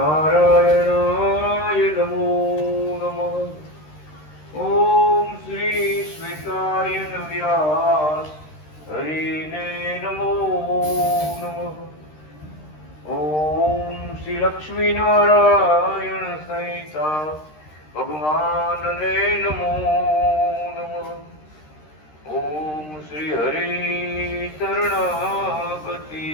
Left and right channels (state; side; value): late; right; 13 ms